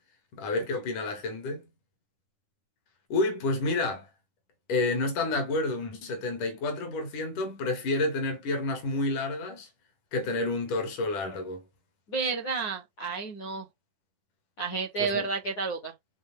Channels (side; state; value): right; late; 9.9 ms